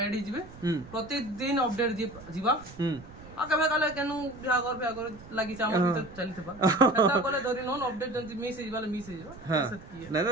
ऐड जिबे प्रतिदिन अपडेट जिबा आ कबे काले केनु बिहागर लागि चाम भीतर चली थबा एता बोले धरि नोन अपडेट जंती मिस हे जिबाले मिस हे जिबा ना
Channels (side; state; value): right; noise; rumble, 18 dB below the sound